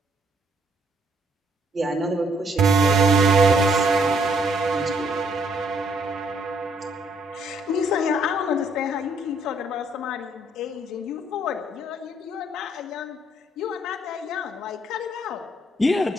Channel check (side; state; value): both; normal; correlation 0.68